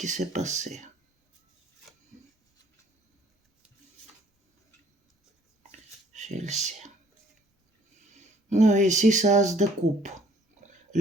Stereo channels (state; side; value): normal; both; correlation 0.59